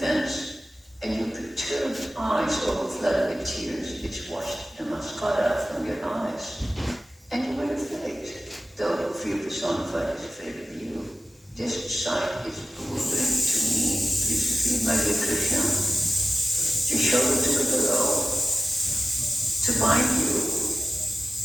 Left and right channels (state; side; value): normal; both; correlation 0.97